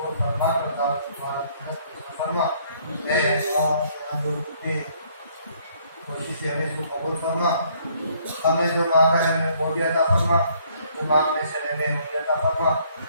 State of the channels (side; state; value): both; inverted; correlation -0.64